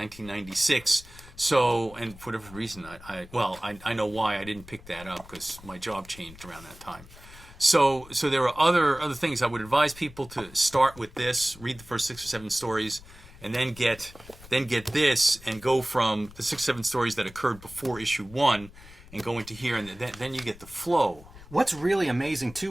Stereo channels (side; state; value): left; noise; rumble, 20 dB below the sound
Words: So, and for whatever reason, I know why I didn't pick that up, because my job changed around that time. So there are other things. I would advise people to start with this, read the first 6 or 7 stories, and then get this, and go from the 6 or 7 stories that occurred before issue 1, and go into here, and then you get the flow. What's really amazing too